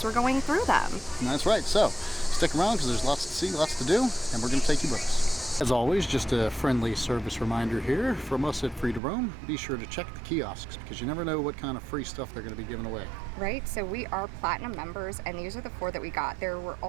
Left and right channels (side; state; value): left; drops out; at 9.0 s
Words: we're going through them. That's right. So stick around because there's lots to see, lots to do, and we're going to take you with us. As always, just a friendly service reminder here from us at Free to Roam. Be sure to check the kiosks because you never know what kind of free stuff they're going to be giving away. Right, so we are Platinum members, and these are the 4 that we got. There were